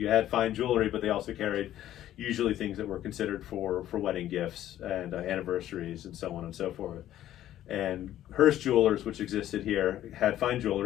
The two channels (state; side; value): quieter; right; 12.7 dB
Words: had fine jewelry, but they also carried usually things that were considered for wedding gifts and anniversaries and so on and so forth. And Hearst Jewelers, which existed here, had fine